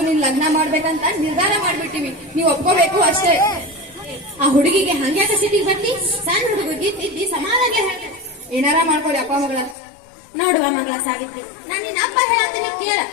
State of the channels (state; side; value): drops out; right; at 9.8 s